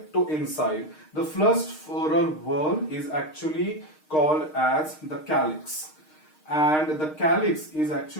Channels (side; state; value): right; late; 6.5 ms